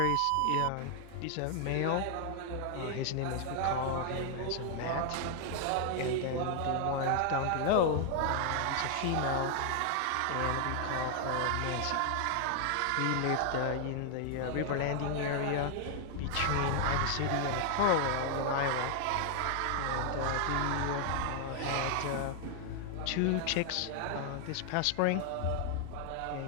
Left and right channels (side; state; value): both; different; correlation 0.00